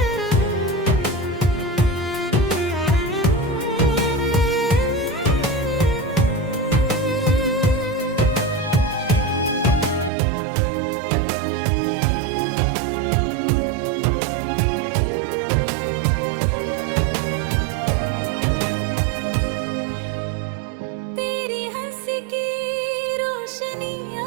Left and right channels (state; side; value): drops out; left; at 10.1 s